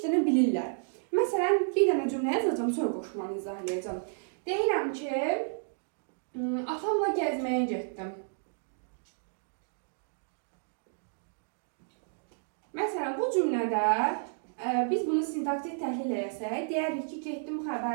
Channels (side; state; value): left; silent; digital silence